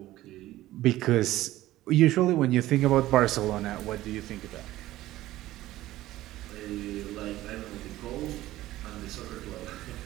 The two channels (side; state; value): left; quieter; 15.7 dB